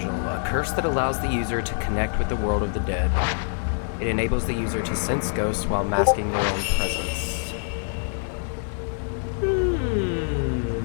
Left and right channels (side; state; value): right; silent; digital silence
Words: a curse that allows the user to connect with the world of the dead. It enables the user to sense ghosts while masking their own presence.